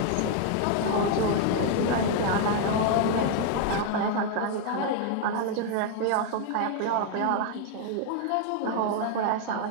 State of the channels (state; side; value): different; both; correlation 0.00